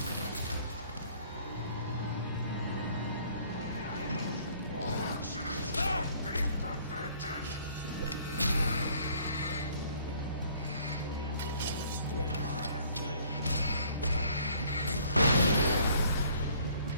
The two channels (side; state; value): both; inverted; correlation -0.59